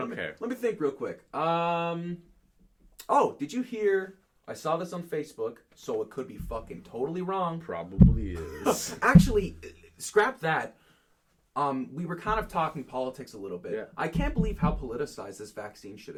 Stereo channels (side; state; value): both; identical; correlation 1.00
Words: care. Let me think real quick. Oh, did you hear... I saw this on Facebook, so it could be fucking totally wrong. Probably is. Actually, scrap that. We were kind of talking politics a little bit. Yeah. I can't believe how politicized this vaccine shit